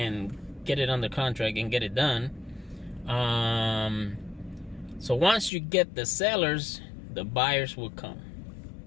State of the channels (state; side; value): drops out; right; at 5.5 s